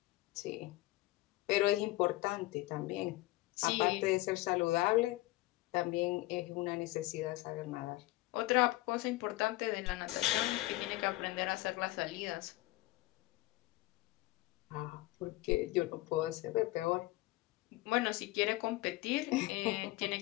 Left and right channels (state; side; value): quieter; right; 19.1 dB